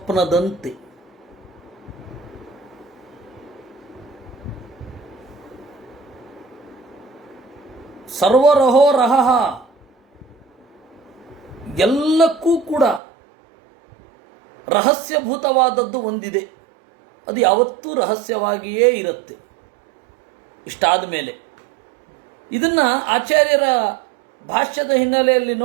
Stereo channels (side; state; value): left; drops out; at 13.0 s